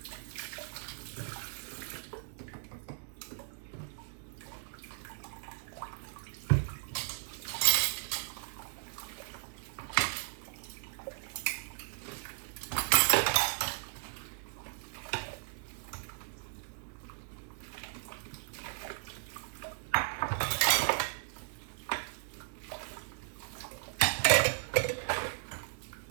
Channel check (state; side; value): silent; left; digital silence